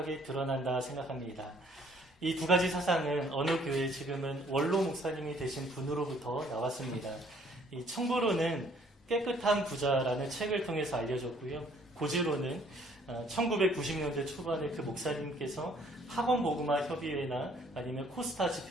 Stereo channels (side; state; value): both; normal; correlation 0.61